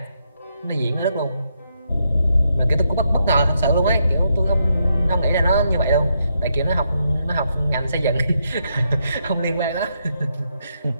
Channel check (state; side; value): inverted; both; correlation -0.79